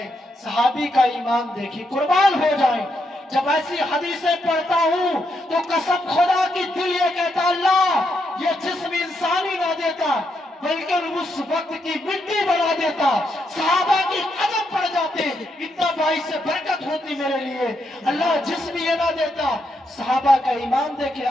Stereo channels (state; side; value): normal; both; correlation 0.80